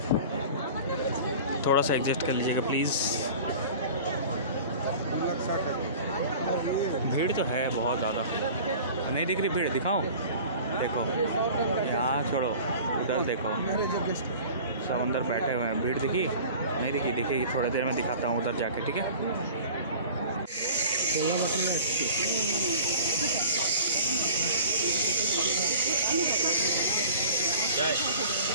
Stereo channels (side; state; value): both; inverted; correlation -0.42